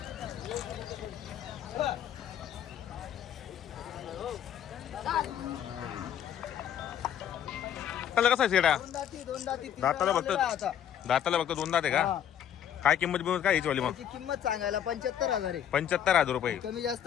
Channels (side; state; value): right; quieter; 9.8 dB